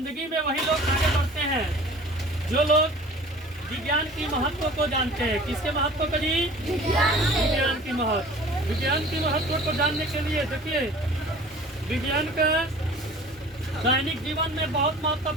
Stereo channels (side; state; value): both; normal; correlation 0.45